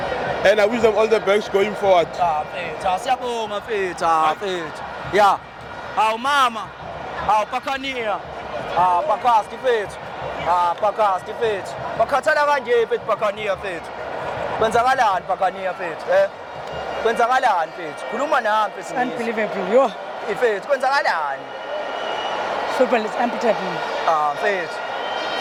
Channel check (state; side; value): identical; both; correlation 1.00